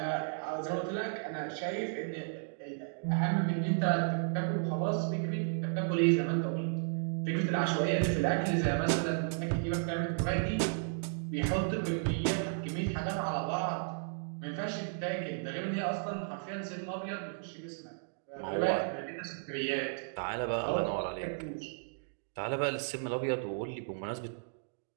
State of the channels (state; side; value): silent; left; digital silence